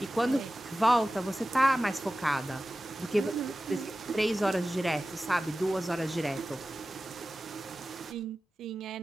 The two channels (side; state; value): both; normal; correlation 0.95